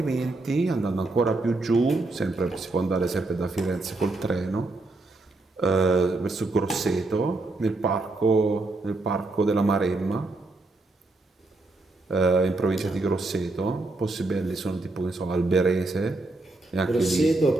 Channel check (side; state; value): left; quieter; 3.1 dB